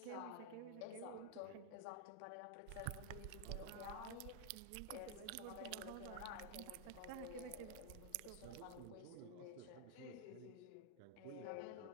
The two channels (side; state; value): both; different; correlation 0.00